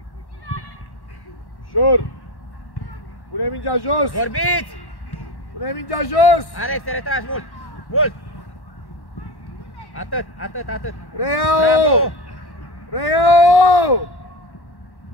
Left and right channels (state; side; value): late; right; 1.1 ms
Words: Ușor! Pune mingea jos! Vorbiți! Pune mingea jos! Alex, te retragi mult! Mult! Atât, atât, atât! Reiau! Reiau!